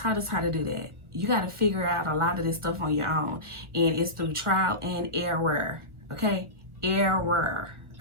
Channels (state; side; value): late; left; 1.4 ms